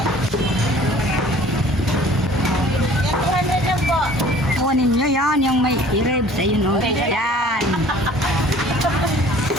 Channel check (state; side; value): normal; both; correlation 0.50